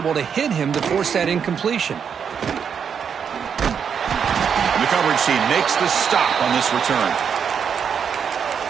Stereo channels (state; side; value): quieter; left; 7.2 dB